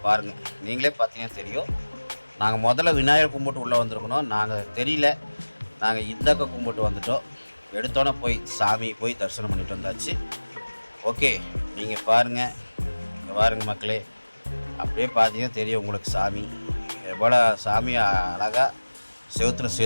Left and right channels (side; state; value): both; inverted; correlation -1.00